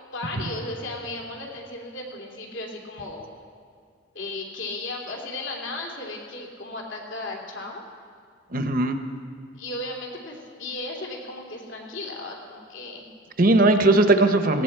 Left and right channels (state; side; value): normal; both; correlation 0.38